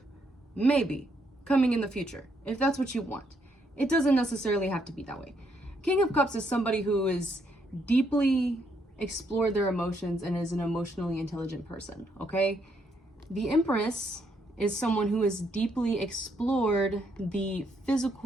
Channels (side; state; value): both; normal; correlation 0.74